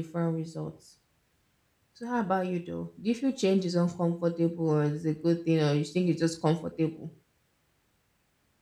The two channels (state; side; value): identical; both; correlation 1.00